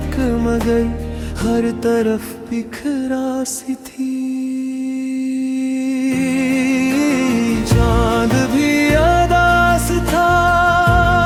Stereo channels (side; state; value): both; identical; correlation 1.00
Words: मगर हर तरफ बिखरा सी थी। चांद भी अदास था,